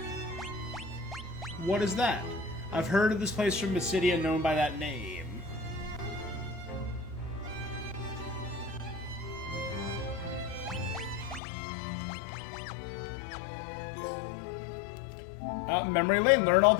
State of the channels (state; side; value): drops out; right; at 11.4 s